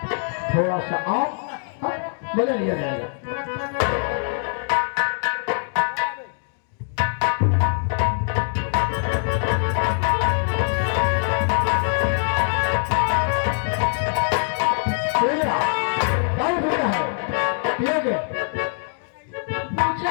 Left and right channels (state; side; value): silent; right; 59 dB below the other